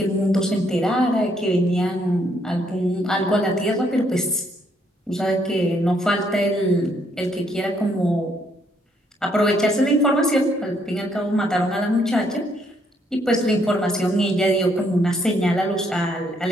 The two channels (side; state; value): both; normal; correlation 0.71